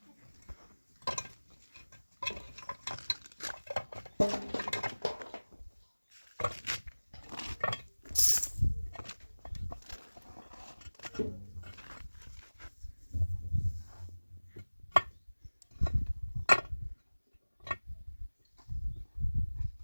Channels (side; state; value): both; inverted; correlation -1.00